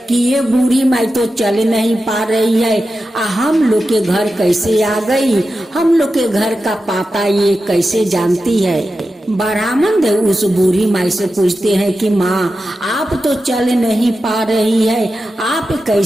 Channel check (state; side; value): normal; both; correlation 0.91